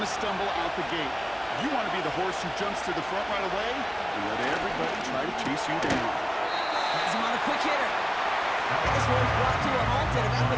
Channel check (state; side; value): identical; both; correlation 1.00